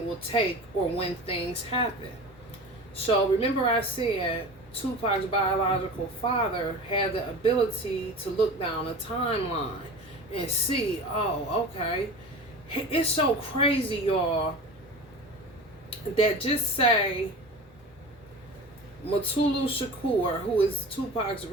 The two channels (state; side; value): normal; both; correlation 0.34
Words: will take or when things happen. So remember I said Tupac's biological father had the ability to look down a timeline and see, oh, okay. It's so crazy, y'all, that just say Mutulu Shakur, who is Tupac's